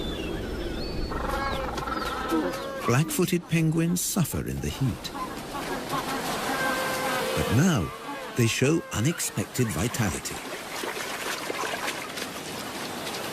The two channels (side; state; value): both; identical; correlation 1.00